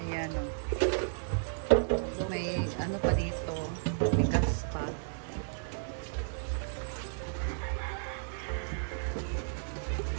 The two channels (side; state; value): left; silent; digital silence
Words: Ayan o. May ano pa dito. Matigas pa.